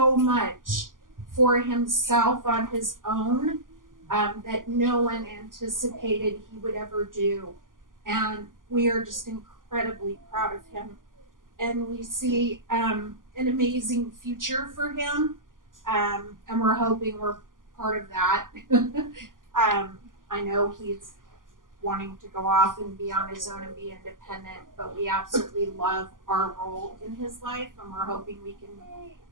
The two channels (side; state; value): left; late; 0.89 ms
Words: much for himself on his own that no one anticipated he would ever do. And we are just incredibly proud of him. And we see an amazing future for him. And we're hoping we're part of that. I know he's wanting to go off and be on his own and be independent, but we absolutely love our role in his life, and we're hoping we can